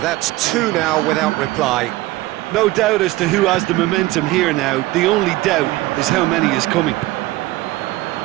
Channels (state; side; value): quieter; left; 18.2 dB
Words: two now without reply. No doubt as to who has the momentum here now. The only doubt is how many is coming.